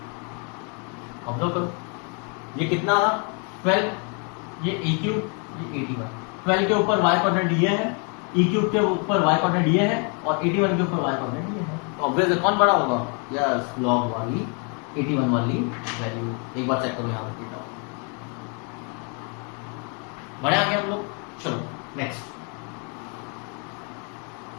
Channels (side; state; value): right; quieter; 37.0 dB